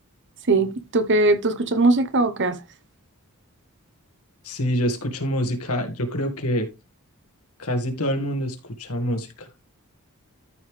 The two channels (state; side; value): normal; both; correlation 0.31